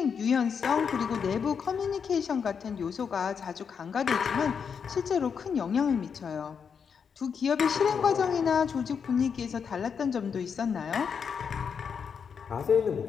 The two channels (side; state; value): right; quieter; 6.6 dB